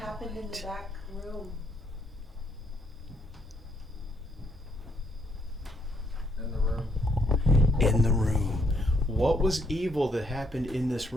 in the back room? In the room. In the room. What was evil that happened in this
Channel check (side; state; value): both; normal; correlation 0.72